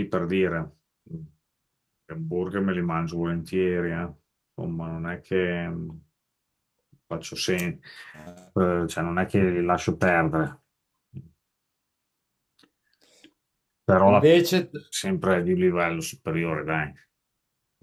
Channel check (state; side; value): identical; both; correlation 1.00